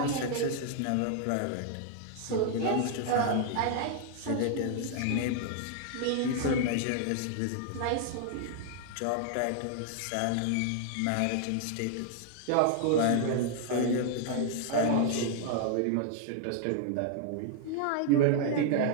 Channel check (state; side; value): different; both; correlation 0.00